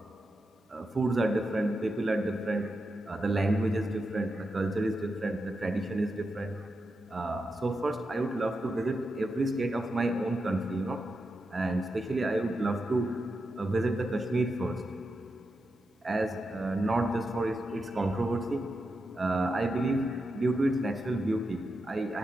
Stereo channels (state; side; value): normal; both; correlation 0.87